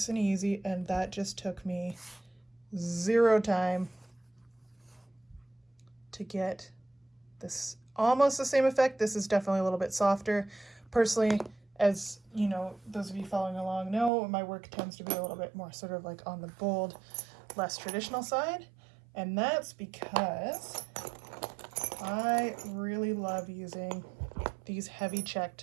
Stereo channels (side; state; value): left; drops out; at 14.1 s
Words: and easy, and that just took me 0 time to get this almost the same effect. This is definitely a little bit softer. Personally, as you know, those of you following along know, my work tends to be a little bit more sort of like on the bold, less traditional side, and that's because I really love using these heavy